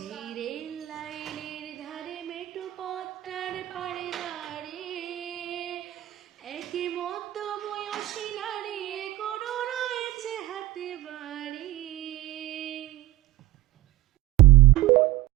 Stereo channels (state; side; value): quieter; left; 17.1 dB